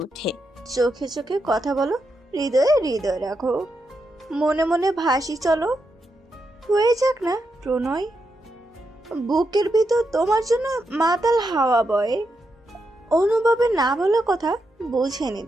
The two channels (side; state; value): both; normal; correlation 0.84